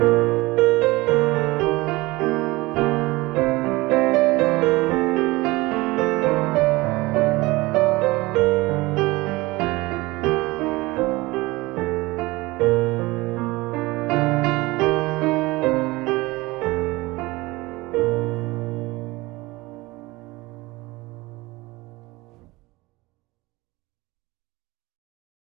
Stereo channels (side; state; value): left; quieter; 21.4 dB